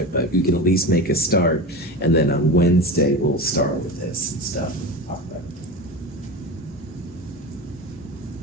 but you can at least make a start. And then on Wednesday, we'll start with this and stuff. All right.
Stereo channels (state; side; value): normal; both; correlation 0.26